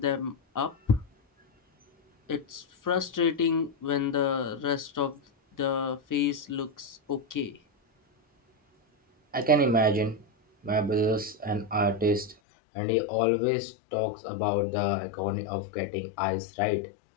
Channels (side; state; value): right; drops out; at 12.4 s